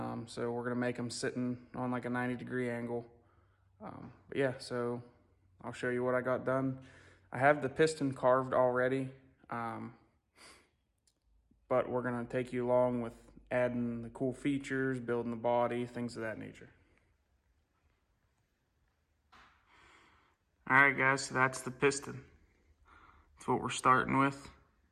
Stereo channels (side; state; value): both; identical; correlation 1.00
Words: we're gonna make him sitting on like a 90-degree angle. But yeah, so I'll show you what I got done. I have the piston carved already, but we're gonna take you along with adding the cool features, building the body, things of that nature. All right, guys, so that's the piston. That's what we're starting with.